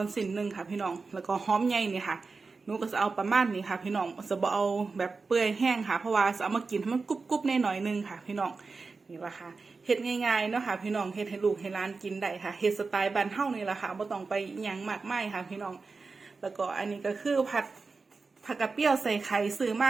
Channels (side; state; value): left; quieter; 4.3 dB